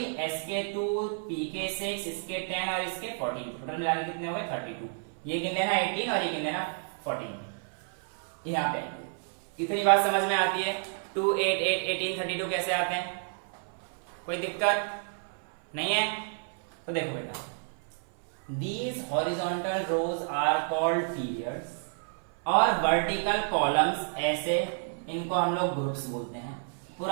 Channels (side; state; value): left; silent; 57 dB below the other